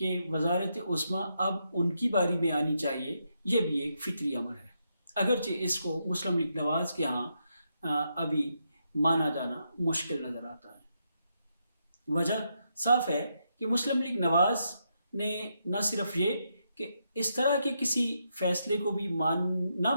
وزارت عظمیٰ اب ان کی باری میں آنی چاہیے، یہ بھی ایک فطری امر ہے، اگرچہ اس کو مسلم لیگ نواز کے ہاں ابھی مانا جانا مشکل نظر آتا ہے۔ وجہ صاف ہے کہ مسلم لیگ نواز نے نہ صرف یہ کہ اس طرح کے کسی فیصلے کو بھی نہ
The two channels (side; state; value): both; inverted; correlation -0.81